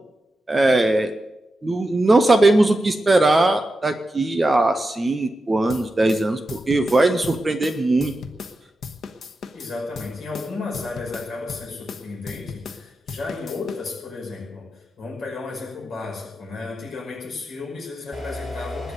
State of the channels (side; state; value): both; normal; correlation 0.90